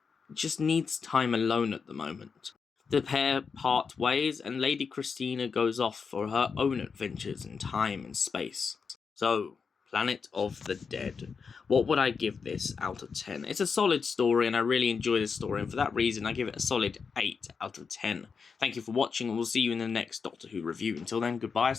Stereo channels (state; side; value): quieter; right; 5.6 dB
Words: just needs time alone at the moment. The pair part ways and Lady Christina goes off for her own adventures in time and space. So, Planet of the Dead. What would I give this out of 10? It's a solid story and I really enjoy this story, and for that reason I give it a solid 8 out of 10. Thank you for watching and we'll see you in the next Doctor Who review. Until then, goodbye,